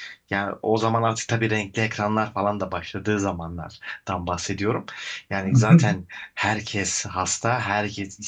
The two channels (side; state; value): both; identical; correlation 1.00